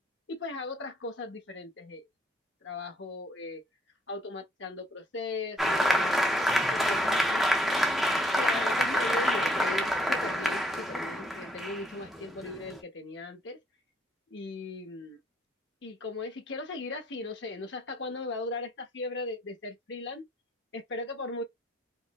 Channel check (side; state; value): both; normal; correlation 0.67